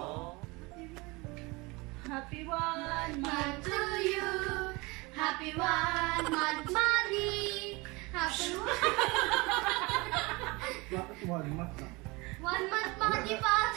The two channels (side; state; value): left; quieter; 25.0 dB